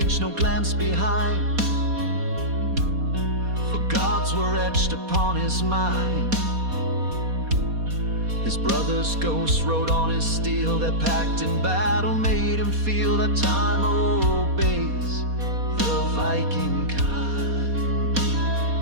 no glance behind, for gods were etched upon his mind. His brother's ghost rode on his steel, that pact in battle made him feel that time obeys the Viking kind.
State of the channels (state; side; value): late; left; 4.2 ms